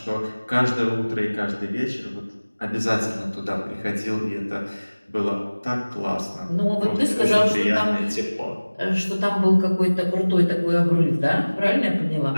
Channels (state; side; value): inverted; both; correlation -1.00